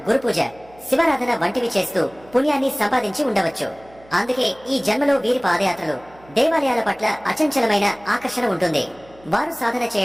గురుపూజ, శివారాధన వంటివి చేస్తూ పుణ్యాన్ని సంపాదించి ఉండవచ్చు. అందుకే ఈ జన్మలో వీరి పాదయాత్రలు, దేవాలయాల పట్ల అచంచలమైన ఆకర్షణ ఉంటుంది. వారు సాధన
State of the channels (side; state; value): right; noise; hum, 25 dB below the sound